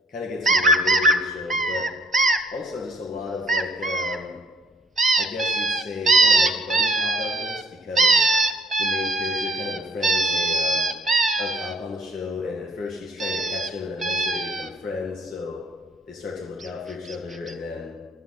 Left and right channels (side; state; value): both; normal; correlation 0.60